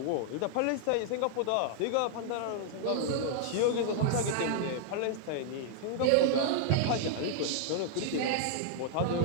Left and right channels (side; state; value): both; different; correlation -0.01